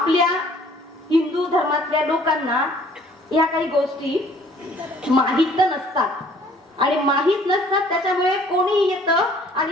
हिंदू धर्मातल्या लोकांना या काही गोष्टी माहित नसतात आणि माहित नसतात, त्याच्यामुळे कोणी येतं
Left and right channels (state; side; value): normal; both; correlation 0.56